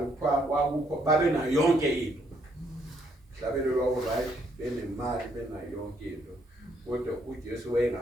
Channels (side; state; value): both; normal; correlation 0.71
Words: kwakukho babe nayo yonke into mhlabeni lwabo right benemali benayo yonke into kodwa uJesu